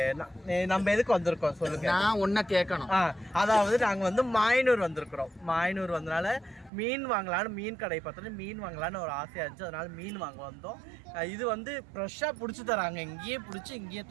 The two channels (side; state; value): left; drops out; at 6.7 s